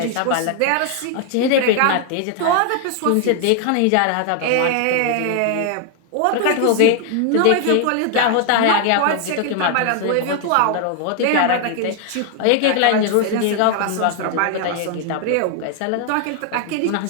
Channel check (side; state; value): both; different; correlation 0.00